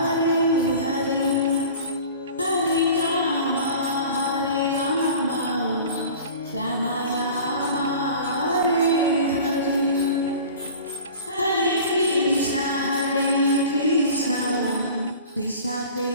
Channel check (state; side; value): inverted; both; correlation -0.41